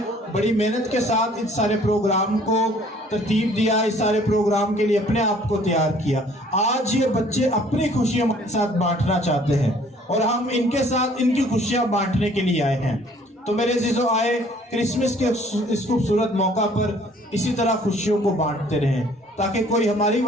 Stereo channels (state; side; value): normal; both; correlation 0.57